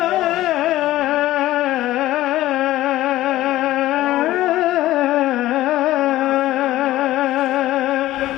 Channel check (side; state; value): right; quieter; 15.5 dB